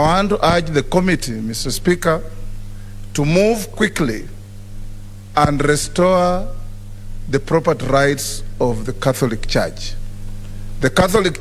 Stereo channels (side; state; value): both; identical; correlation 1.00